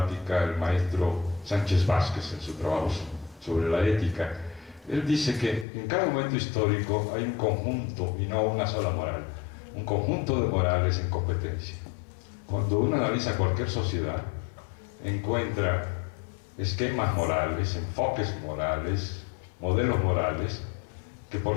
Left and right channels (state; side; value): drops out; right; at 5.7 s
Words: el maestro Sánchez Vázquez en su trabajo sobre la ética. Él dice que en cada momento histórico hay un conjunto y no una sola moral, un conjunto de morales en competencia. Cuando uno analiza cualquier sociedad, encuentra esquemas morales, enfoques morales, modelos morales, que,